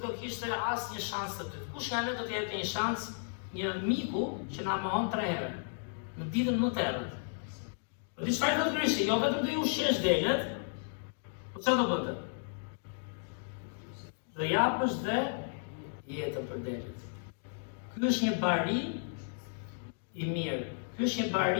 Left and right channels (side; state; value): right; silent; digital silence